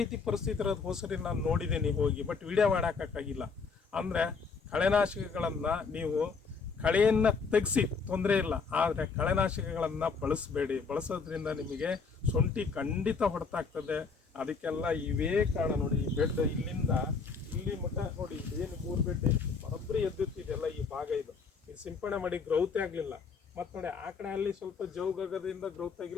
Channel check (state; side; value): quieter; right; 5.0 dB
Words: ರೀತಿ ಪರಿಸ್ಥಿತಿ ಇರೋದು ಹೋಸರಿ ನಾನು ನೋಡಿದ್ದೀನಿ ಹೋಗಿ, ಬಟ್ ವಿಡಿಯೋ ಮಾಡೋಕ್ಕಾಗಿಲ್ಲ. ಅಂದರೆ ಕಳೆನಾಶಕಗಳನ್ನು ನೀವು ಕಳೆಯನ್ನು ತೆಗೆಸಿ ತೊಂದರೆ ಇಲ್ಲ, ಆದರೆ ಕಳೆನಾಶಕಗಳನ್ನು ಬಳಸಬೇಡಿ. ಬಳಸೋದ್ರಿಂದ ನಿಮಗೆ ಶುಂಠಿ ಖಂಡಿತ ಹೊಡೆತಾಗ್ತದೆ. ಅದಕ್ಕೆಲ್ಲ ಇವೇ ಕಾರಣ. ನೋಡಿ, ಈ ಬೆಡ್ ಇಲ್ಲಿಂದ ಇಲ್ಲಿ ಮಟ್ಟ ನೋಡಿ, ಏನು 3 ಬೆಡ್ ಬರೋಬ್ಬರಿ ಎದ್ದುತ್ತಿದೆಯಲ್ಲ, ಈ ಭಾಗ ಇದು ಸಿಂಪಡಣೆ ಮಾಡಿ ಗ್ರೌತ್ ಆಗಲಿಲ್ಲ. ಮತ್ತು ನೋಡಿ, ಆ ಕಡೆ ಅಲ್ಲಿ ಸ್ವಲ್ಪ ಜೌಗದಿಂದ ಗ್ರೌತ್